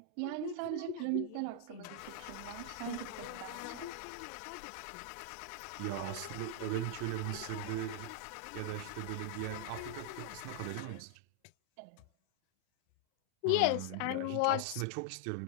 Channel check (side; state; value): both; different; correlation -0.01